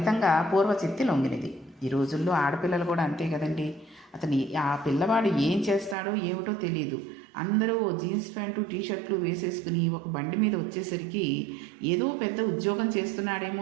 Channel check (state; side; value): drops out; left; at 6.0 s